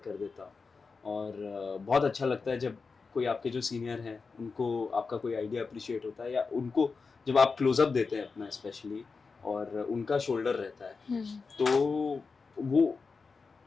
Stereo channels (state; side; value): quieter; right; 4.7 dB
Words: कर देता, और बहुत अच्छा लगता है जब कोई आपके जो सीनियर हैं उनको आपका कोई आइडिया अप्रिशिएट होता है, या उनको जब आप क्लोजअप देते हैं अपना स्पेशली, और उनका शोल्डर रहता है, तो वो